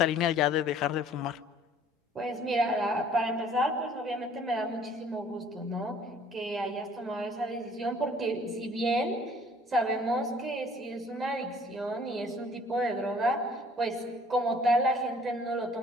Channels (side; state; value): both; normal; correlation 0.55